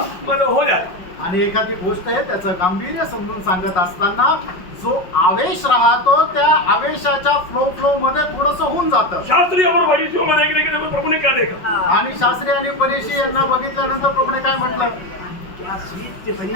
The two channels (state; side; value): late; right; 5.4 ms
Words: मतलब हो जाता. आणि एखादी गोष्ट आहे त्याचं गांभीर्य समजून सांगत असताना जो आवेश राहतो त्या आवेशाच्या फ्लो मध्ये थोडस होऊन जातं. शास्त्री और फरीसियों में देखने के लिए प्रभु ने क्या देखा? आणि शास्त्री आणि परीक्षी यांना बघितल्यानंतर प्रभूने काय म्हटलं? क्या स्वीट थे